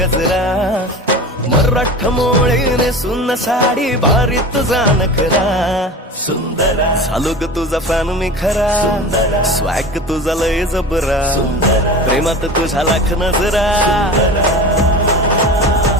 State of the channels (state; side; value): normal; both; correlation 0.33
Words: मराठ मोळीने सुन साडी भारी तुझा नखरा सुंदरा झालो ग तुझा फॅन मी खरा स्वॅग तुझा लय जबरा प्रेमात तुझा लाख नजरा